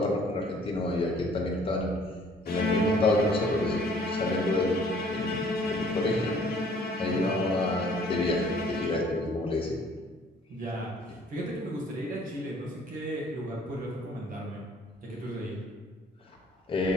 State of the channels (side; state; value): both; normal; correlation 0.57